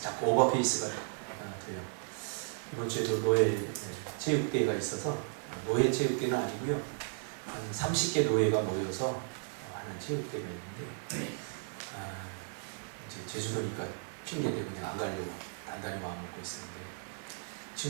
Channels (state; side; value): silent; left; 55 dB below the other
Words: 자꾸 오버페이스가 돼요. 이번 주에도 노예 체육대회가 있어서 노예 체육대회는 아니고요. 한 30개 노예가 모여서 하는 체육대회가 있는데 이제 제주도니까 핑계대고 그냥 안 가려고 단단히 마음 먹고 있었는데